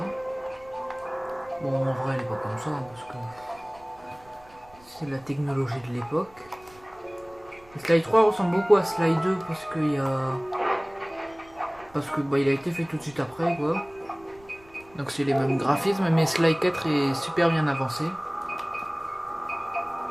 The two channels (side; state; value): right; noise; rumble, 26 dB below the sound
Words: Bon en vrai elle est pas comme ça, hein, parce que c'est la technologie de l'époque. Sly 3 ressemble beaucoup à Sly 2 parce qu'il y a... il a été fait tout de suite après quoi. Donc c'est les mêmes graphismes, mais Sly 4 est super bien avancé. Enquête